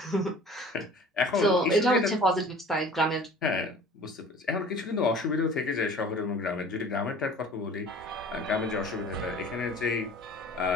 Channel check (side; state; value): both; normal; correlation 0.45